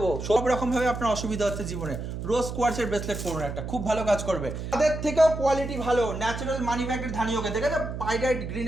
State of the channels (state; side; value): noise; right; hum, 6 dB below the sound